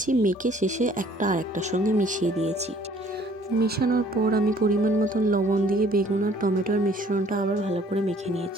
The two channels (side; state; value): both; normal; correlation 0.57